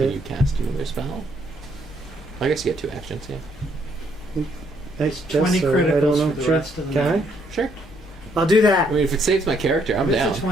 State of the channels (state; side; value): normal; both; correlation 0.70